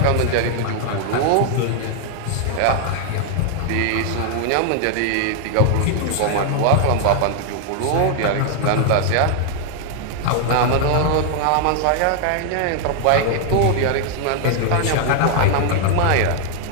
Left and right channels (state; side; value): different; both; correlation 0.00